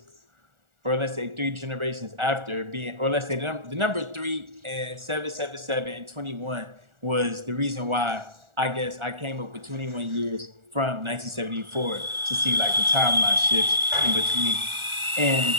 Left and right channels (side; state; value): left; late; 1.4 ms